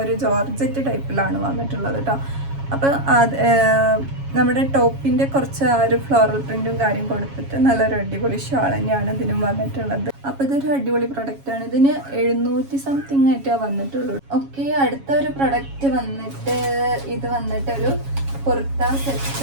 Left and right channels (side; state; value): left; late; 7.3 ms